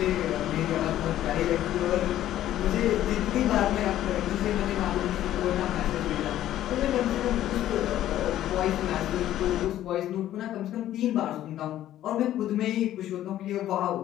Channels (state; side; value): quieter; right; 12.8 dB